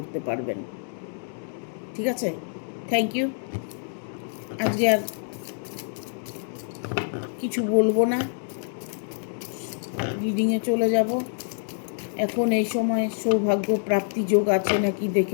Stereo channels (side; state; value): right; silent; digital silence